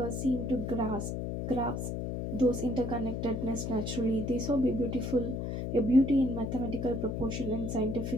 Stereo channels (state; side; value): noise; left; hum, 3 dB below the sound